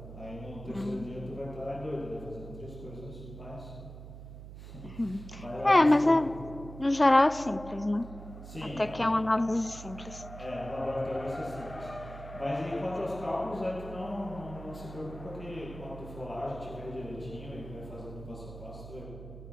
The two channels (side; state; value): right; noise; hum, 13 dB below the sound